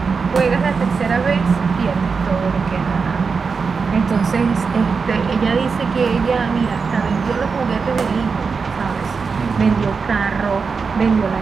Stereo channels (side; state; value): left; quieter; 5.1 dB